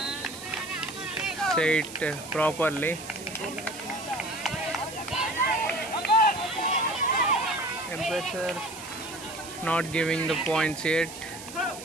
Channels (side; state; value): right; noise; hiss, 13 dB below the sound